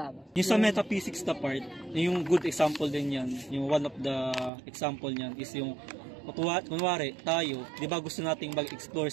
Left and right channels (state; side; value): drops out; left; at 4.5 s